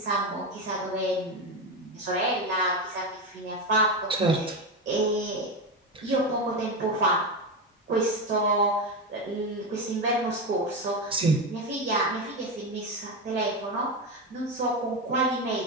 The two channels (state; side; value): normal; both; correlation 0.15